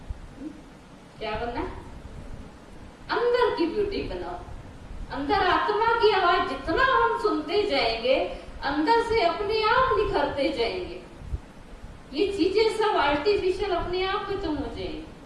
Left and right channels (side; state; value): both; identical; correlation 1.00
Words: क्या बनना है? अंदर की ब्यूटी बनाओ, अंदर आत्मा की आवाज जितना हम सुनते जाएंगे, अंदर से अपने आप निखरते जाएंगे। ये चीजें सब आर्टिफिशियल अपने आप खत्म हो जाएंगी।